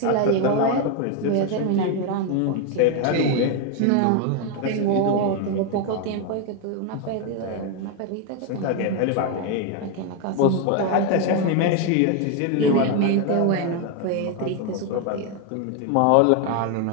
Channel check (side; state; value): both; different; correlation 0.01